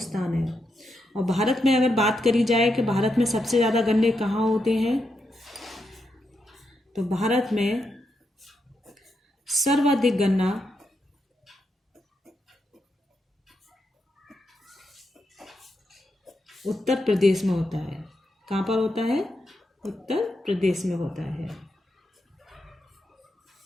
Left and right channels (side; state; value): both; normal; correlation 0.83